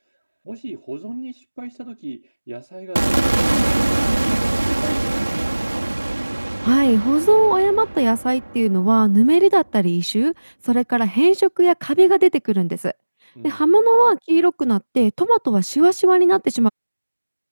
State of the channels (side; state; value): both; inverted; correlation -1.00